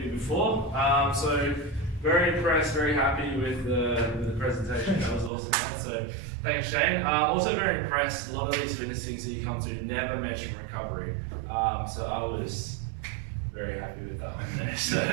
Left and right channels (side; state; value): left; drops out; at 5.3 s